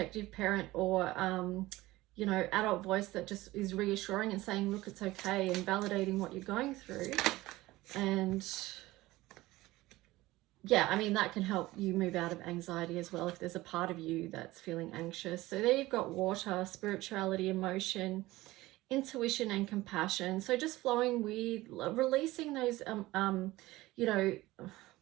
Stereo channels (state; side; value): quieter; left; 18.4 dB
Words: parent or you know, adult voice that just is reassuring and saying, look, it's okay, and validating what you're going through. And yeah, I mean, that can help you move out of anxiety as well if there's a part of you that's feeling anxious. So there you've got water, spirituality, emotion, intuition, and compassion. So just flowing with, releasing those, you know,